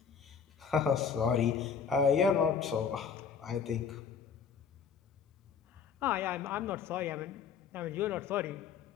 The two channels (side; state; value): right; quieter; 6.6 dB